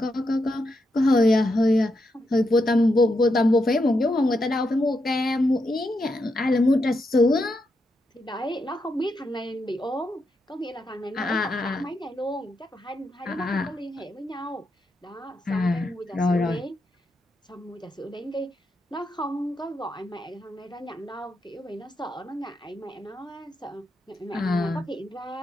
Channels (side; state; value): both; normal; correlation 0.83